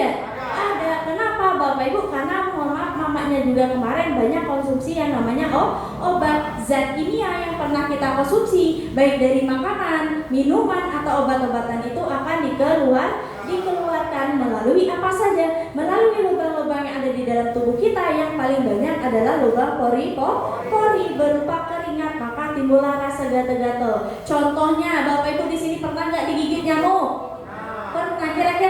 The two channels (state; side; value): identical; both; correlation 1.00